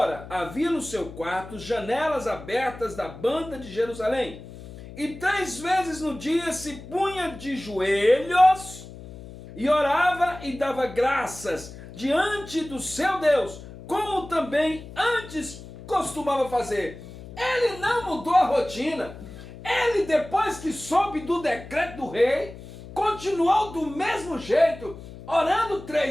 havia no seu quarto janelas abertas da banda de Jerusalém, e 3 vezes no dia se punha de joelhos e orava e dava graças diante do seu Deus, como também antes costumava fazer. Ele não mudou a rotina. Ele, depois que soube do decreto do rei, continuou do mesmo jeito, orando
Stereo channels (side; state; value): left; noise; hum, 15 dB below the sound